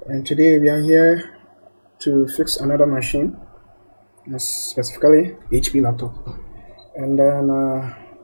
And today we are here to fix another machine, specifically HP laptop. And then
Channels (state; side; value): inverted; both; correlation -1.00